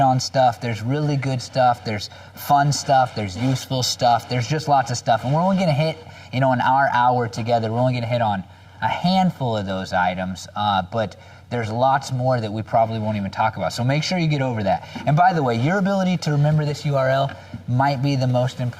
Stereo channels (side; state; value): both; identical; correlation 1.00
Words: on stuff. There's really good stuff. There's fun stuff. There's useful stuff. There's just lots of stuff. And we're only going to hit, in our hour together, we're only going to hit on a handful of those items. But there's lots more that we probably won't even talk about. So make sure you get over that. And by the way, your ability to remember this URL might be the most